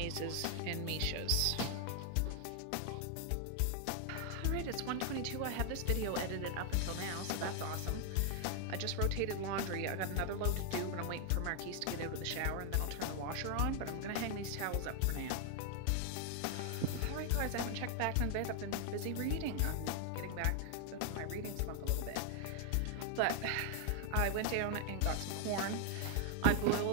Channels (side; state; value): both; different; correlation 0.00